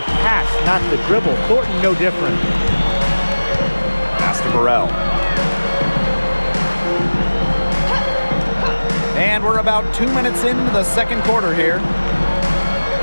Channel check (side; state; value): both; inverted; correlation -1.00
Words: pass, not the dribble. Thornton, no different. Pass to Burrell. And we're about 2 minutes into the second quarter here.